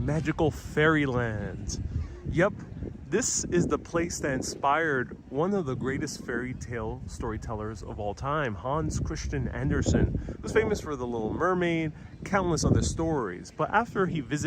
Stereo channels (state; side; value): identical; both; correlation 1.00